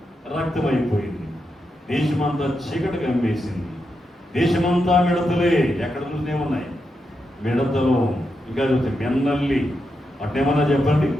రక్తమైపోయింది. దేశమంతా చీకటి కమ్మేసింది. దేశమంతా మిడతలే. ఎక్కడ చూసినే ఉన్నాయి మిడతలు. ఇంకా చూస్తే మెన్నల్లి, అట్టేమన్నా చెప్పండి.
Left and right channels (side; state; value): both; normal; correlation 0.85